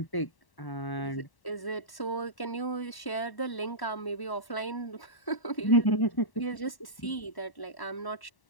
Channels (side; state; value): right; late; 1.1 ms